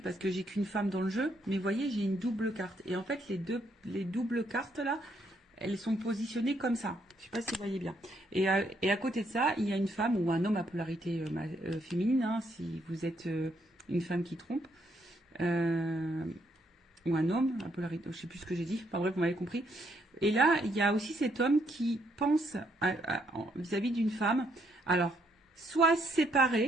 parce que j'ai qu'une femme dans le jeu, mais vous voyez, j'ai une double carte. Et en fait, les doubles cartes là, elles sont positionnées comme ça. Je ne sais pas si vous voyez bien. Et à côté de ça, il y a une femme ou un homme à polarité féminine, hein, si vous êtes une femme qui trompe, ou un homme à polarité, je ne sais plus ce que j'ai dit, enfin bref, vous m'avez compris. Et là, il y a aussi cet homme qui pense vis-à-vis d'une femme, alors, soit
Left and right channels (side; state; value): both; normal; correlation 0.73